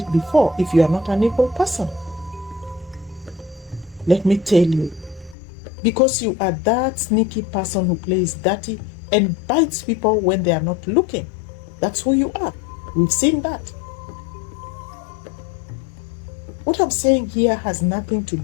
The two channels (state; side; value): drops out; right; at 5.4 s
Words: before if you are not an evil person? Let me tell you, because you are that sneaky person who plays dirty and bites people when they are not looking. That's who you are. We've seen that. What I'm saying here has nothing to